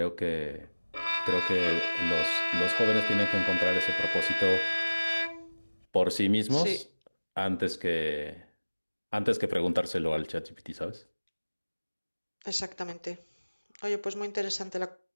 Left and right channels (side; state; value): both; inverted; correlation -1.00